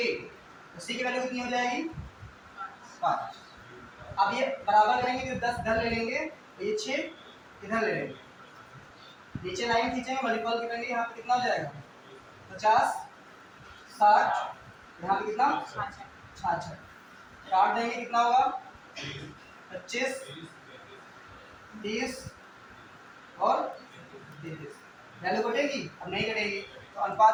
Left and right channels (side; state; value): both; identical; correlation 1.00